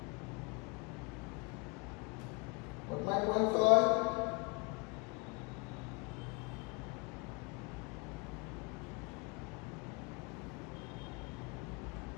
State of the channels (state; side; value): quieter; right; 30.2 dB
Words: What my point all?